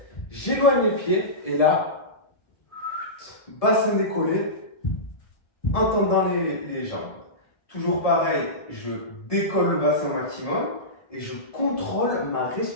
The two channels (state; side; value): late; right; 1.5 ms